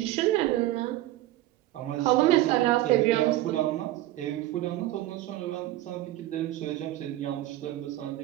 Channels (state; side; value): quieter; left; 15.4 dB